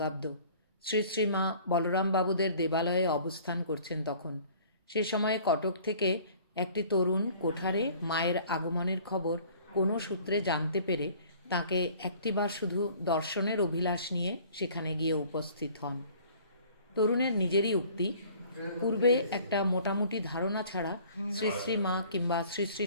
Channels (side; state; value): both; inverted; correlation -0.51